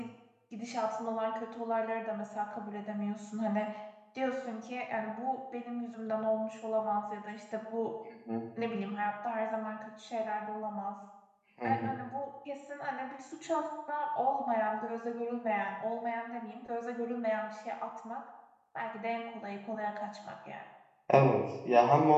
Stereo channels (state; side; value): identical; both; correlation 1.00